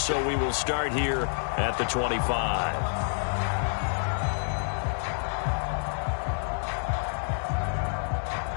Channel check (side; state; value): right; silent; digital silence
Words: we will start here at the 25.